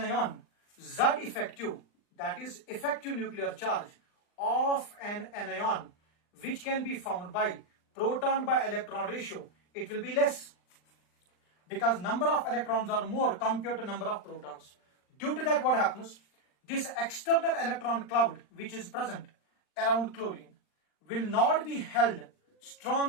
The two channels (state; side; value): late; right; 39 ms